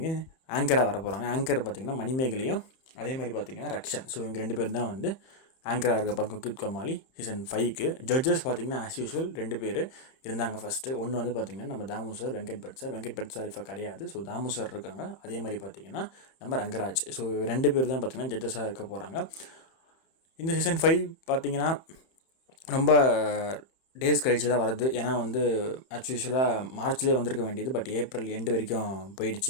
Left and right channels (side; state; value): right; late; 31 ms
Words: ஆங்கராக வர போகிறாங்க. ஆங்கர் பார்த்திங்கன்னா மணிமேகலையும் அதே மாதிரி பார்த்திங்கன்னா ரக்ஷன். ஸோ இவங்க 2 பேர் தான் வந்து ஆங்கராக இருக்க போகிறாங்க குக் வித் கோமாளி சீசன் 5க்கு. ஜட்ஜஸ் பார்த்திங்கன்னா ஆஸ் யூஷுவல் 2 பேர் இருந்தாங்க ஃபஸ்ட்டு. ஒன்று வந்து பார்த்திங்கன்னா நம்ம தாமு சார், வெங்கட் பட் சார் இப்போ கிடையாது. ஸோ தாமு சார் இருக்காங்க. அதே மாதிரி பார்த்திங்கன்னா நம்ம ரங்கராஜ். ஸோ 2 பேர் தான் பார்த்திங்கன்னா ஜட்ஜஸாக இருக்க போகிறாங்க. இந்த சீசன் 5 பார்த்திங்கன்னா ரொம்ப டேஸ் கழிச்சு தான் வருது. ஏன்னா வந்து ஆக்சுவலாக மார்ச்லேயே வந்திருக்க வேண்டியது, பட் ஏப்ரல் எண்டு வரைக்கும்